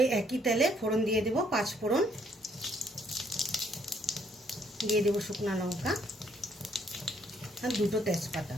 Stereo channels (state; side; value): normal; both; correlation 0.67